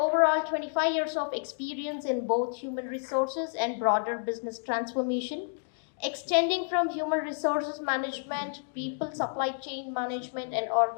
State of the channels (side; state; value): right; silent; digital silence